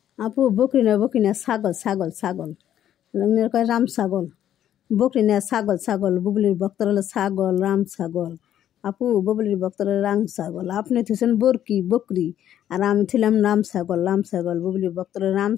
আপু বকরি না ছাগল ছাগল ছাগল কয় রাম ছাগল। বকরি না ছাগল ছাগল, বুবলির ভক্তর হলো ছাগল, রাম ছাগল। আপু বুবলির ভক্তর রাম ছাগল, আপনি থুছেন বরকি বকরি, আর আমি ছিলাম রাম ছাগল। বুবলির ভক্তর রাম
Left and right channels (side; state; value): right; quieter; 10.9 dB